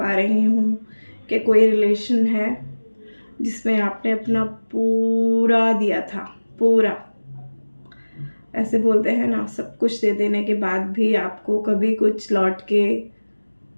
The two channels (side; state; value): both; inverted; correlation -1.00